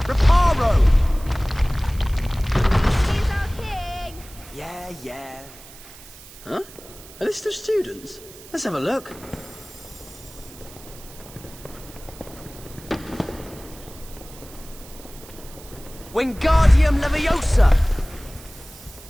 He's our king. Yeah. Huh? A list of students? Let's have a look. Wingardium Leviosa!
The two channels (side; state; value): right; noise; hiss, 19 dB below the sound